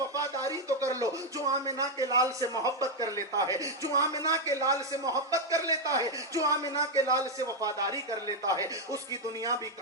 तो कर लो। जो आमिना के लाल से मोहब्बत कर लेता है, जो आमिना के लाल से मोहब्बत कर लेता है, जो आमिना के लाल से वफादारी कर लेता है, उसकी दुनिया भी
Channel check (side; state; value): both; normal; correlation 0.02